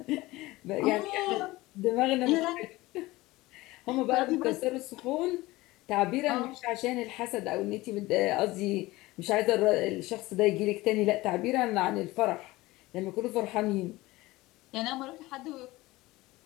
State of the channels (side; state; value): right; quieter; 19.6 dB